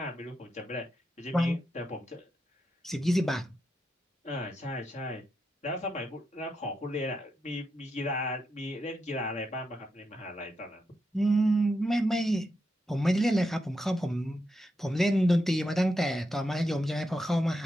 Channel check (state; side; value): normal; both; correlation 0.85